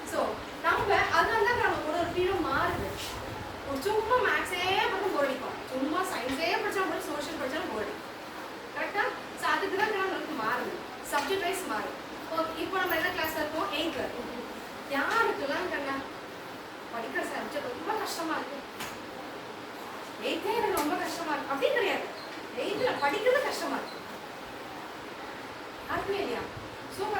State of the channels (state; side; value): identical; both; correlation 1.00